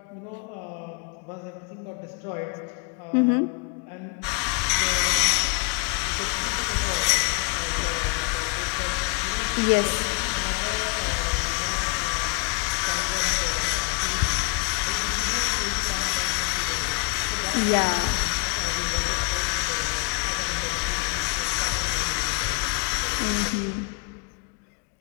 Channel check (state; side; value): quieter; right; 28.4 dB